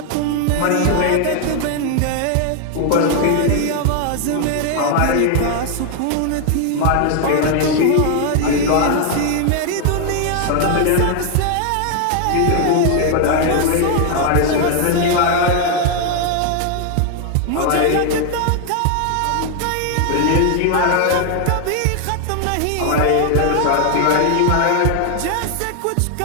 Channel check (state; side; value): different; both; correlation 0.00